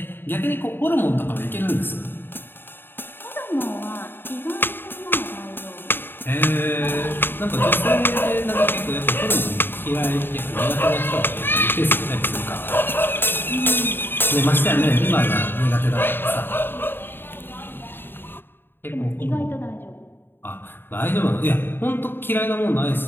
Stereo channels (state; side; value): late; right; 0.099 ms